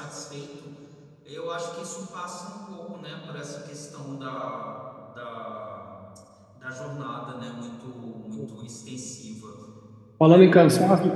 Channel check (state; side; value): identical; both; correlation 1.00